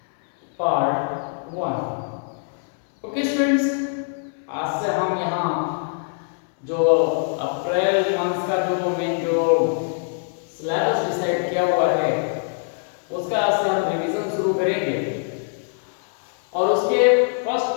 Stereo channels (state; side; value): silent; right; 63 dB below the other